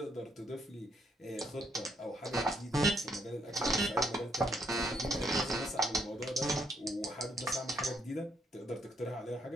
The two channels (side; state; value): both; normal; correlation 0.74